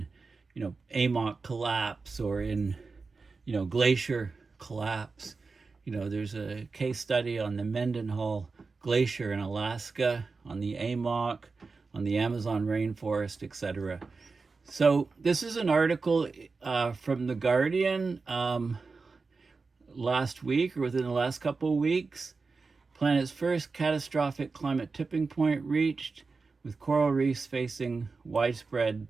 AMOC collapse or in, glacier collapse. There's a case study on the Mendenhall Glacier in Alaska, on the AMOC, on the Amazon rainforest, etc. So this is an article from The Guardian last week, or within the last couple of weeks. Planet's first catastrophic climate tipping point reached, with coral reefs facing widespread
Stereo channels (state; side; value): quieter; left; 4.3 dB